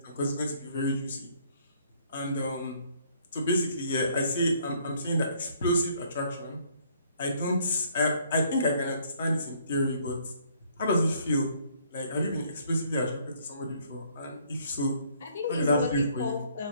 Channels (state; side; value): inverted; both; correlation -0.63